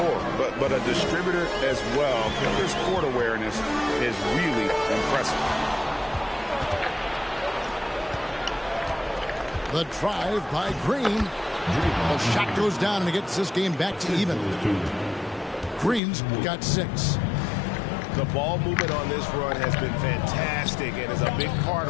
but a distributor as well. Porter's court awareness is really impressive. The drive by Green. The shot goes down and it gets this game back to even. Green's got 6. The ball movement on this run has been fantastic and is a big part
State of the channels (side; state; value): right; drops out; at 16.0 s